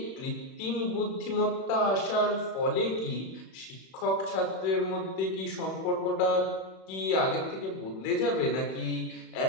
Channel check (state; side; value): late; right; 31 ms